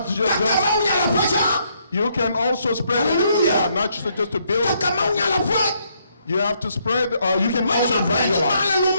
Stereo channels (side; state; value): both; inverted; correlation -0.72